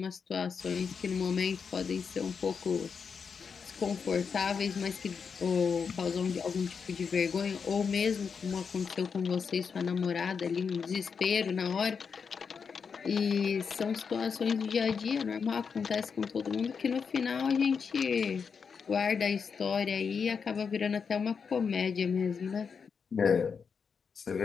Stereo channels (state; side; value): quieter; right; 6.0 dB